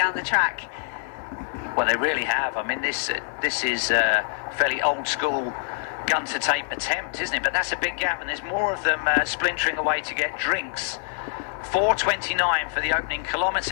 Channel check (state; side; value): silent; right; digital silence